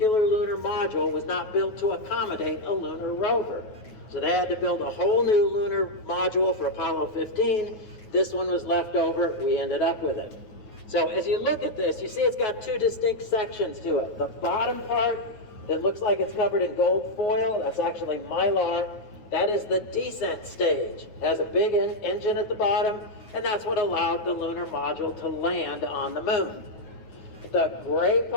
lunar module was not built to accommodate a lunar rover. So they had to build a whole new lunar module for Apollo 15. This one was left over. We ended up with it. So as you look at this, you see it's got two distinct sections to it. The bottom part that looks like it's covered in gold foil, that's actually mylar. That is the descent stage. It has a big engine at the bottom, and that's what allowed the lunar module to land on the moon. The gray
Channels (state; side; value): late; right; 9.4 ms